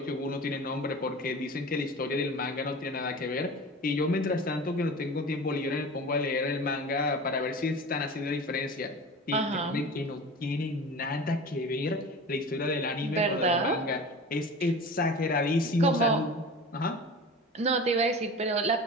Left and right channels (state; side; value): normal; both; correlation 0.35